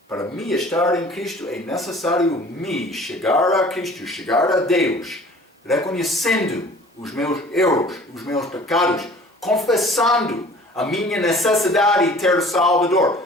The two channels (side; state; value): both; normal; correlation 0.48